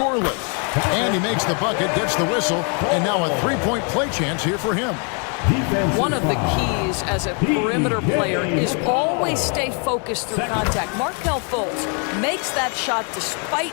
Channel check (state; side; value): quieter; right; 37.9 dB